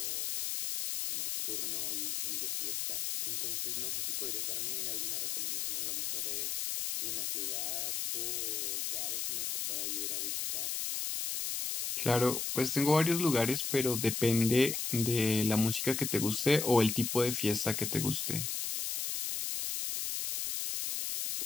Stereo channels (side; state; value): left; noise; hiss, 1 dB below the sound